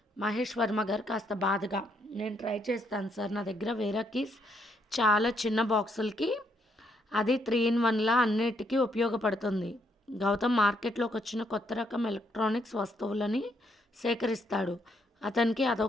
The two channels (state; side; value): normal; both; correlation 0.73